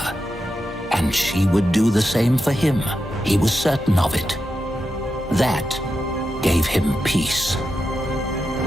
And she would do the same for him. He was certain of it. That gave him peace.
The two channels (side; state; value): both; normal; correlation 0.88